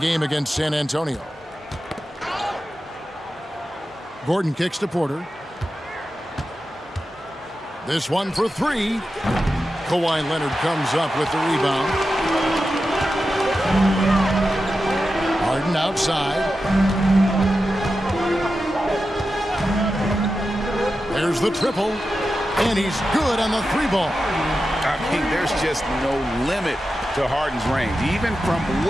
against San Antonio. Gordon kicks to Porter. This one for 3. Kawhi Leonard comes up with the rebound. Harden outside. There's the triple. And he's good on the 3-ball. I mean, there's just no limit to Harden's range. Even from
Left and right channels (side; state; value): both; normal; correlation 0.91